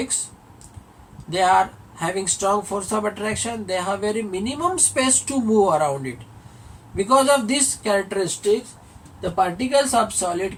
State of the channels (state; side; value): identical; both; correlation 1.00